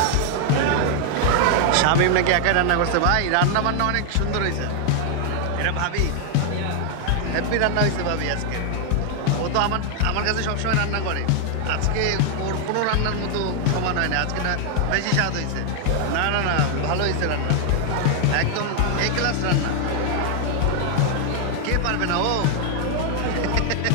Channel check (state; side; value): different; both; correlation 0.00